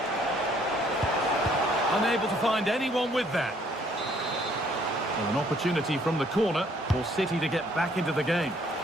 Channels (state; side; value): normal; both; correlation 0.63